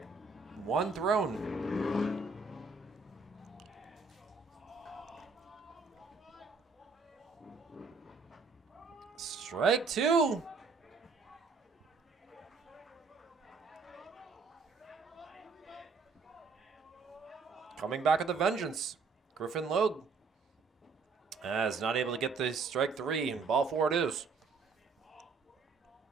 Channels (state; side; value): quieter; left; 4.5 dB